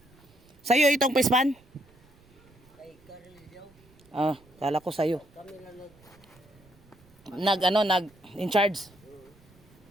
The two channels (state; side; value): noise; right; rumble, 28 dB below the sound